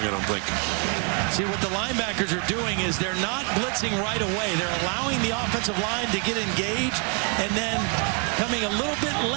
I don't think. See, what the linebackers are doing is they're not blitzing right away. They're allowing the offensive line to get engaged and then coming a little bit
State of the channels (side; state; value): left; quieter; 36.5 dB